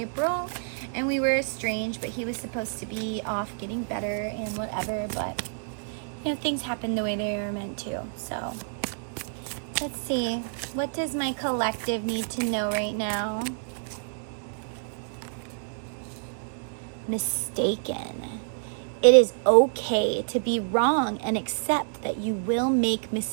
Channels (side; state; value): left; silent; digital silence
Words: and we were estranged, but he was supposed to be off getting better and whatever, but, things happen the way they are meant to. So, let's see. What does my collective need to know right now? Mistaken. It is okay to be wrong and accept that you will make